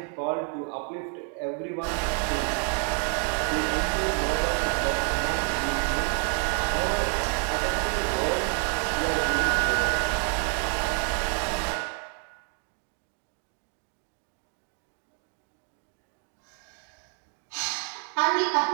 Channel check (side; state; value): left; quieter; 39.8 dB